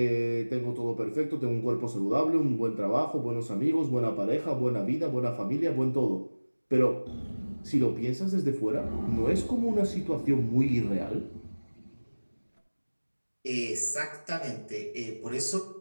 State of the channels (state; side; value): inverted; both; correlation -1.00